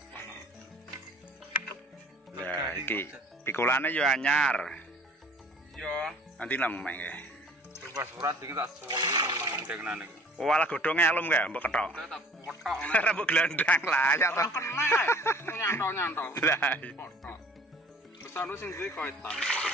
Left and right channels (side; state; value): both; normal; correlation 0.50